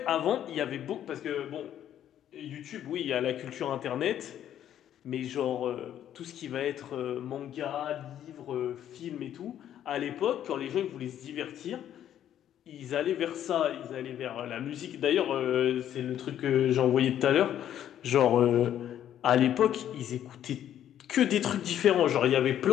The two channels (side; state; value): right; quieter; 10.8 dB